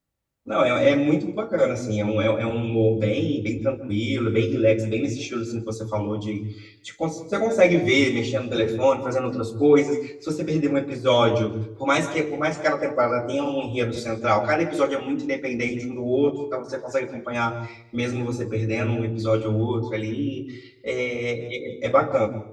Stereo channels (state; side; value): identical; both; correlation 1.00